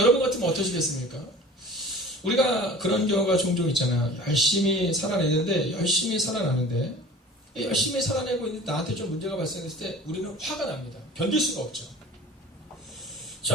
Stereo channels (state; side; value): normal; both; correlation 0.41